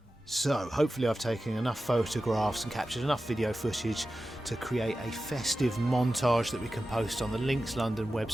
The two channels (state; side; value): normal; both; correlation 0.93